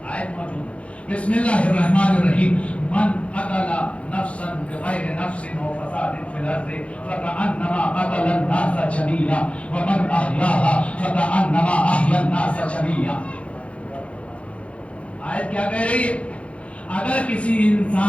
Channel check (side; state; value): right; late; 0.062 ms